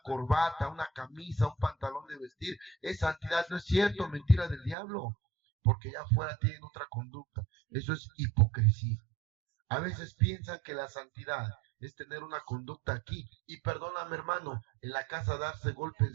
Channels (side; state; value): left; drops out; at 4.8 s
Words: corbata, una camisa, un pantalón de vestir, es santidad. No es cierto, mentira del diablo, porque ya afuera tienen otra conducta. Eso es hipocresía. A veces piensan que la santidad es tener una conducta aquí. Y perdóname, hermano, en la casa darse golpes